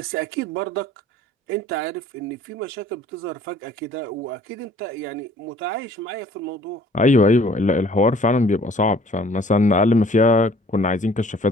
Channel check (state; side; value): normal; both; correlation 0.54